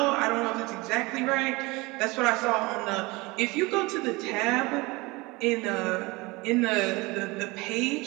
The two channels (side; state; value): left; quieter; 23.8 dB